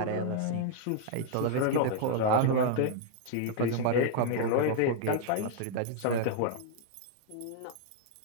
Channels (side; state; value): both; different; correlation -0.01